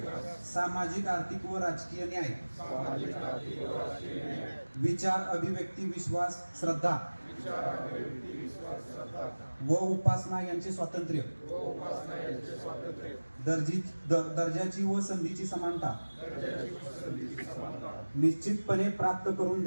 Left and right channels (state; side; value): inverted; both; correlation -1.00